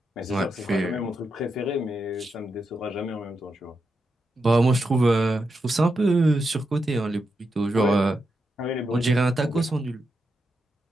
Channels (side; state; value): both; normal; correlation 0.86